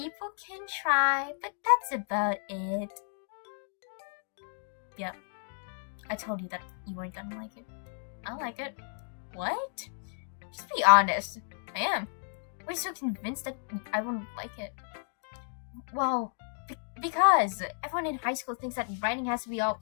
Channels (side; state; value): right; silent; digital silence